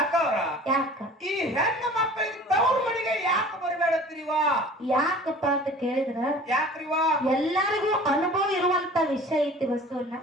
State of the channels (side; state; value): both; normal; correlation 0.45